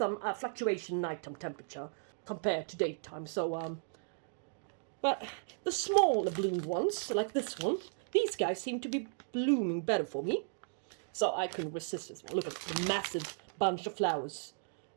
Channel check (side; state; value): left; silent; digital silence